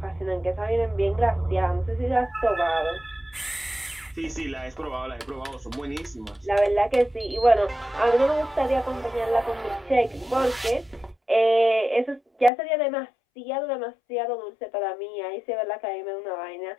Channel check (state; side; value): drops out; right; at 12.5 s